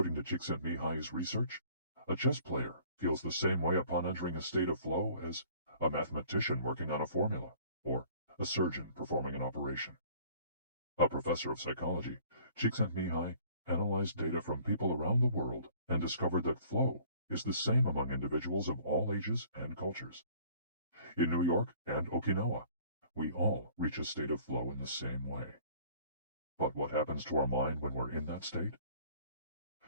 to Csikszentmihalyi's research, a chess player feels the same way upon entering a state of flow as a mathematician working on a formula, or a surgeon performing an operation. A professor of psychology, Csikszentmihalyi analyzed data from people around the world and discovered that flow is the same among individuals of all ages and cultures. In New York and Okinawa, we all reach a state of flow in the same way. But what happens to our mind when we're in that state?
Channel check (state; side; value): inverted; both; correlation -0.54